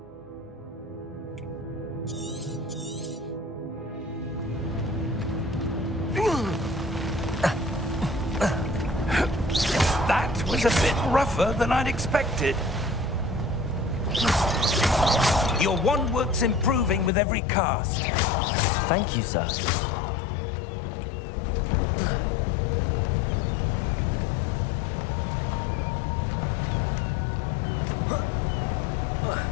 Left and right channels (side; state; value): right; drops out; at 17.1 s